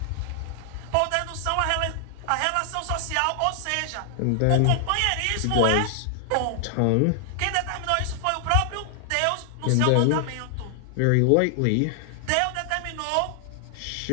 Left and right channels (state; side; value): different; both; correlation 0.00